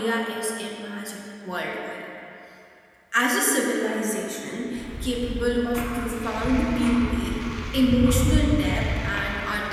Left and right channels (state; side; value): identical; both; correlation 1.00